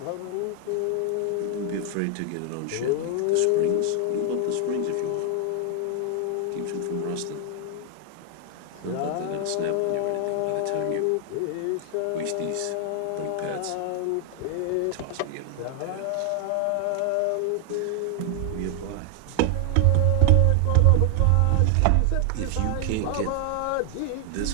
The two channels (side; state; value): both; different; correlation 0.00